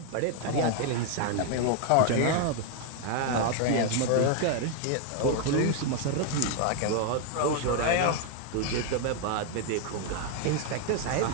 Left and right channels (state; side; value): different; both; correlation 0.00